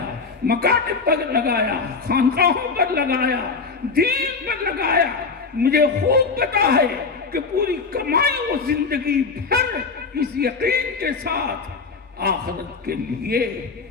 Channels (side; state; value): right; quieter; 4.6 dB